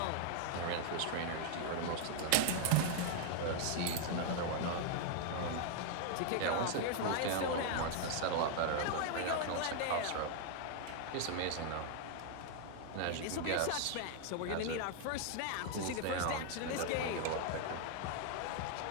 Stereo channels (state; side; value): different; both; correlation 0.00